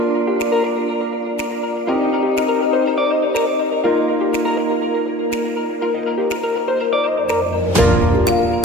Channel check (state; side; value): normal; both; correlation 0.47